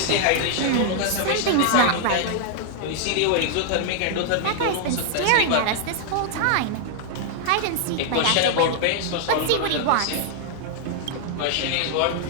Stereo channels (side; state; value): both; different; correlation 0.00